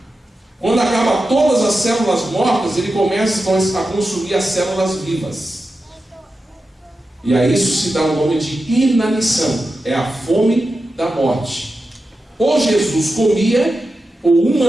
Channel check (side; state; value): both; normal; correlation 0.91